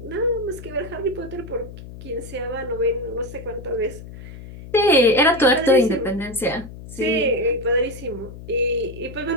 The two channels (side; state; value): left; noise; hum, 14 dB below the sound